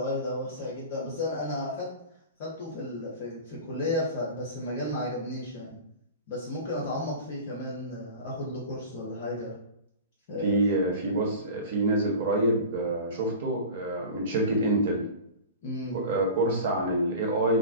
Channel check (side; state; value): both; inverted; correlation -0.34